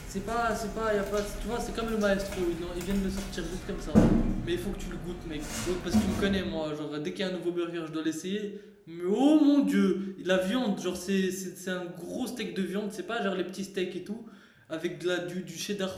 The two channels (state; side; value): identical; both; correlation 1.00